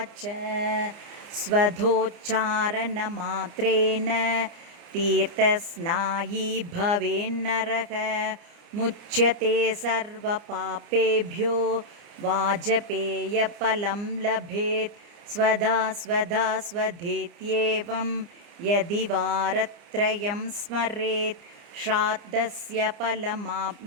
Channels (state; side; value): late; left; 29 ms